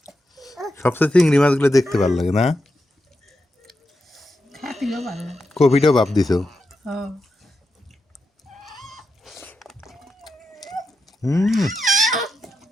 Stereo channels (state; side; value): normal; both; correlation 0.87